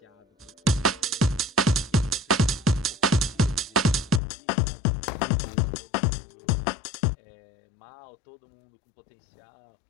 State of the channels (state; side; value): drops out; right; at 4.2 s